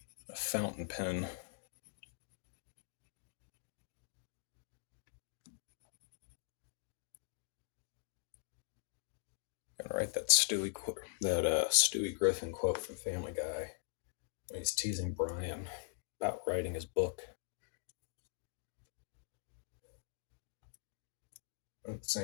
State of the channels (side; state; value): right; silent; digital silence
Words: a fountain pen. Gonna write that Stewie Griffin quote from Family Guy when he's teasing Brian about writing his book. At the